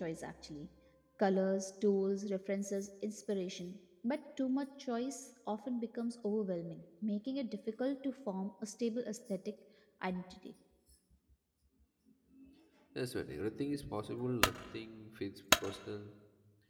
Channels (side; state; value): both; identical; correlation 1.00